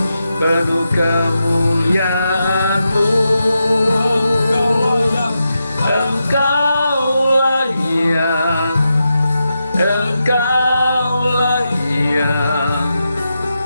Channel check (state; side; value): inverted; both; correlation -0.87